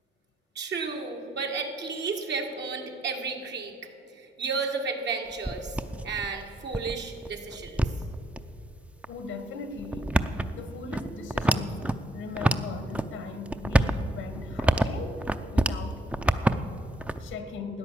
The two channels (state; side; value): normal; both; correlation 0.68